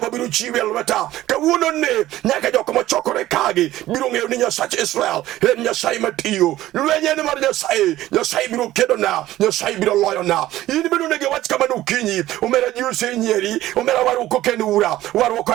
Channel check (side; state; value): left; quieter; 15.0 dB